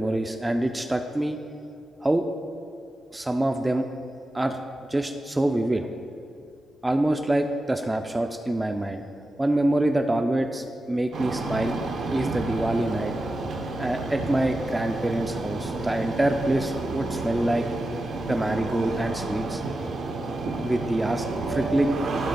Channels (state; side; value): normal; both; correlation 0.92